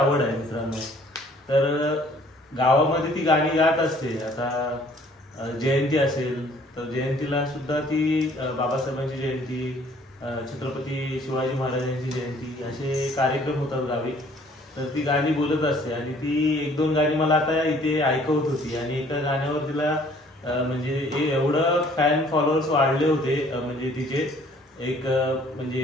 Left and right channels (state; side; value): normal; both; correlation 0.58